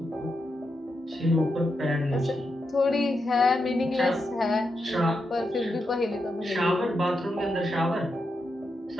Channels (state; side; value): normal; both; correlation 0.85